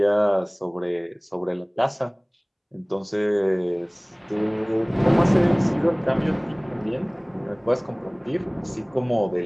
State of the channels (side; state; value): both; identical; correlation 1.00